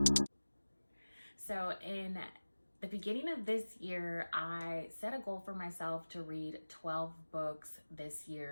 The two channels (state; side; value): inverted; both; correlation -1.00